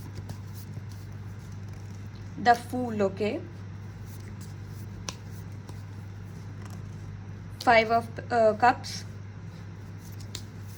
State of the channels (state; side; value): identical; both; correlation 1.00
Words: The fool. Okay. Five of cups.